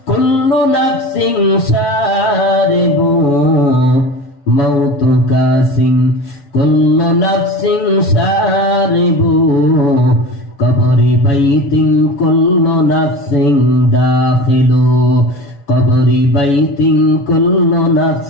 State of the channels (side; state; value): right; late; 7.4 ms